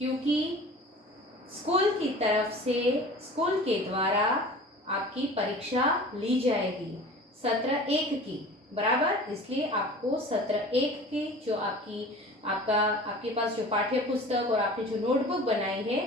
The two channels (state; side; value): normal; both; correlation 0.40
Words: स्कूल की तरफ से स्कूल के द्वारा आपकी परीक्षा ली जाएगी सत्र 1 की, बराबर। इसलिए आपको सत्र 1 की जो आपके पास जो पाठ्य पुस्तक और आपने जो नोटबुक बनाई है